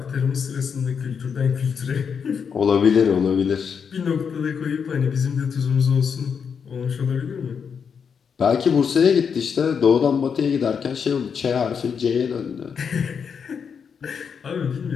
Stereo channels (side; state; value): right; quieter; 6.6 dB